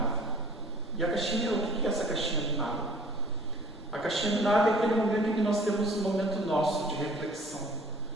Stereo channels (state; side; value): normal; both; correlation 0.51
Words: E a caixinha, o que é essa caixinha do nada? A caixinha do nada é aquele momento em que nós temos um momento nosso de reflexão.